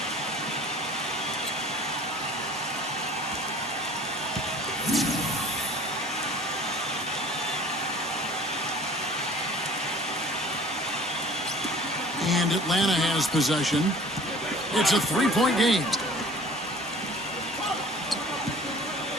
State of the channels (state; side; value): normal; both; correlation 0.48